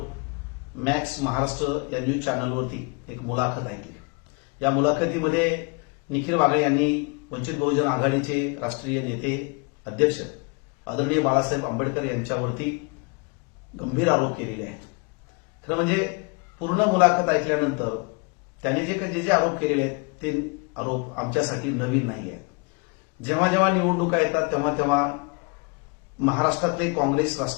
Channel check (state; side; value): quieter; right; 31.5 dB